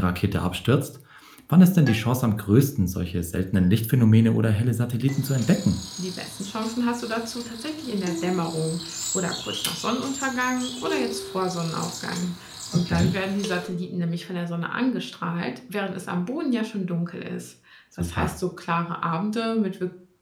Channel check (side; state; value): both; identical; correlation 1.00